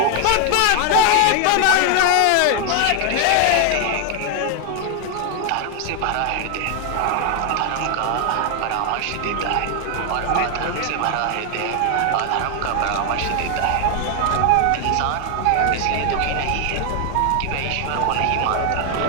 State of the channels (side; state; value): both; different; correlation 0.00